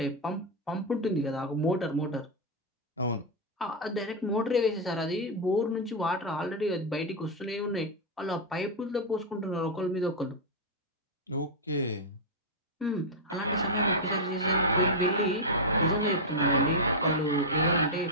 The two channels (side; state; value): both; normal; correlation -0.02